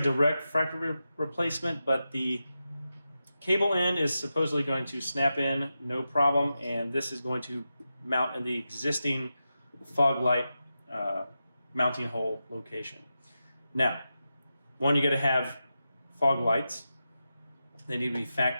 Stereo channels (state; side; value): inverted; both; correlation -0.90